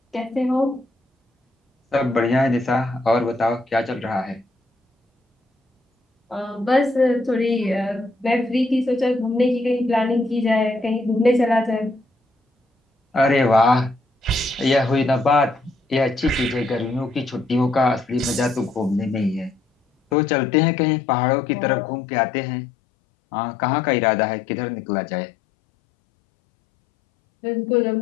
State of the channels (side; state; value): right; drops out; at 20.2 s